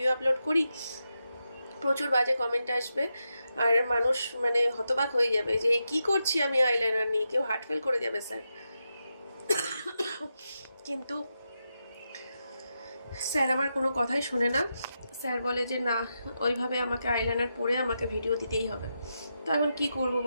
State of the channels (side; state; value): both; inverted; correlation -0.87